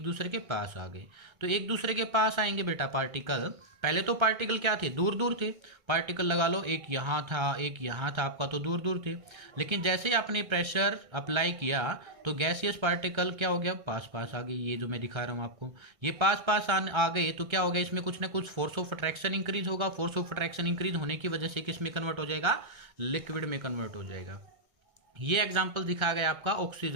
दूसरे के पास आ गए। तो एक दूसरे के पास आएंगे बेटा पार्टिकल, पहले तो पार्टिकल क्या थे, दूर दूर थे। पार्टिकल लगा लो, एक यहाँ था एक यहाँ था, आपका तो दूर दूर थे। लेकिन जैसे ही आपने प्रेशर अप्लाई किया तो गैसियस पार्टिकल क्या हो गया, पास पास आ गए। ये जो मैं दिखा रहा हूँ आपको, ये पास पास आ गए तो क्या हो गया, इसमें कुछ ना कुछ फोर्स ऑफ अट्रैक्शन इंक्रीज होगा। फोर्स ऑफ अट्रैक्शन इंक्रीज होने की वजह से किस में कन्वर्ट हो जाएगा, लिक्विड में कन्वर्ट हो जाएगा। ये एग्जाम्पल दिखाया गया आपका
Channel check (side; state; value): left; late; 1.3 ms